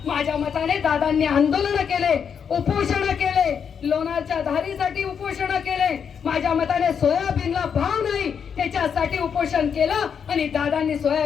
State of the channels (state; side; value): quieter; right; 7.1 dB